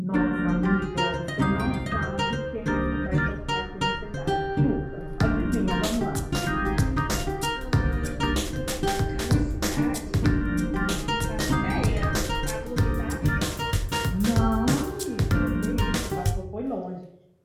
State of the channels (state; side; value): identical; both; correlation 1.00